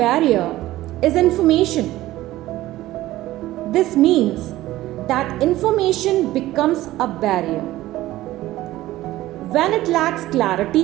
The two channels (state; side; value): quieter; left; 16.0 dB